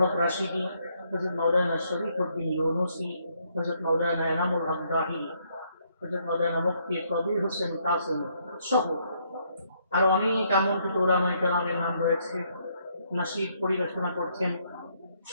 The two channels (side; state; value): both; inverted; correlation -0.72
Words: হক রাশিদি, হযরত মাওলানা শরীফউদ্দিন ইউনুসি, হযরত মাওলানা এনামুল হক জাহিরি, হযরত মাওলানা মুফতি কবির হোসেন কাসেমি সহ আরো অনেক আমন্ত্রিত উলামায়ে কেরামের নাম রয়েছে। নাশিদ পরিবেশনা করছেন